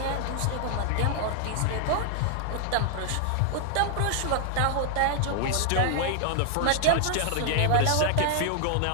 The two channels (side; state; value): both; different; correlation 0.00